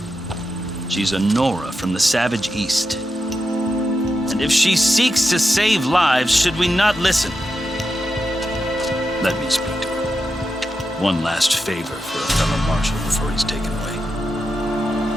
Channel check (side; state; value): both; normal; correlation 0.88